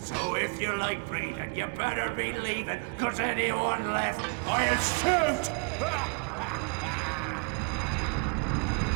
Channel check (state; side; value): quieter; left; 37.5 dB